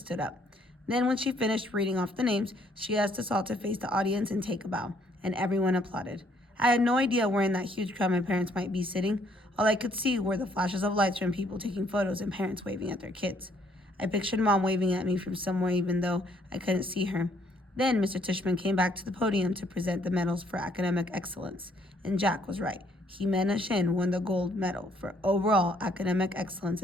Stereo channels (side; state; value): both; normal; correlation 0.66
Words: up. Then when she finished reading off the names, she asked us all to face the audience and take a bow, and everyone applauded. I had no idea where in that huge crowd my parents might be sitting. All I could see were the flashes of lights from people taking photos and parents waving at their kids. I pictured Mom waving at me from somewhere even though I couldn't see her. Then Mr. Tishman came back to the podium to present the medals for academic excellence, and Jack was right. Jimena Shin won the gold medal for overall academic excellence